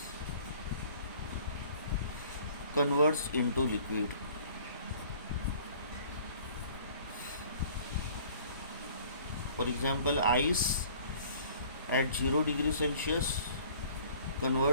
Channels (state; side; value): inverted; both; correlation -0.52